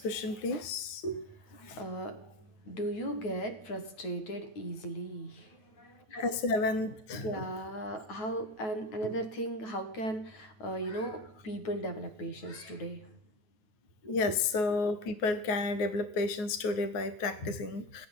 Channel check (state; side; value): late; right; 9.5 ms